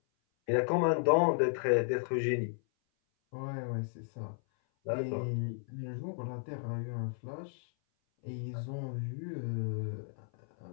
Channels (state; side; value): silent; right; 55 dB below the other